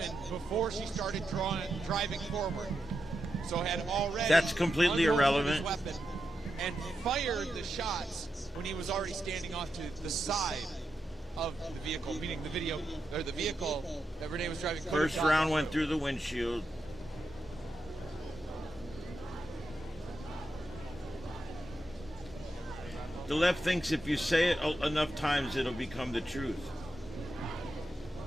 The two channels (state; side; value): normal; both; correlation 0.87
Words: before she started driving forward. So had already That's completely irrelevant. His weapon and fired the shots when he was already standing off to the side of the vehicle, meaning the vehicle that Renee was driving. First round went through the windshield. The left thinks if you say it enough times, it'll become the truth.